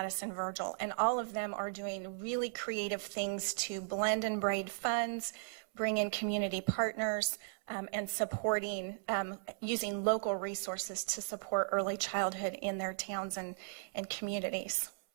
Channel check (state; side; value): silent; left; 53 dB below the other